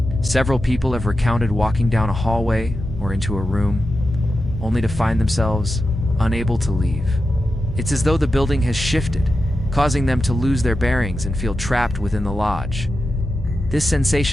Several people have recounted walking down a hallway or into a room, only to find themselves unable to leave. It's as though the building has shifted, causing them to lose their bearings and feel trapped within the lodge. This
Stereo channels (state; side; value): normal; both; correlation 0.90